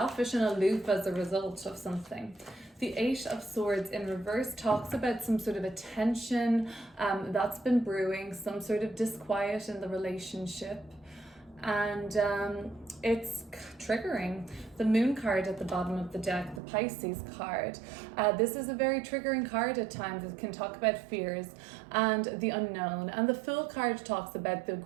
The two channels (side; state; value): left; drops out; at 16.6 s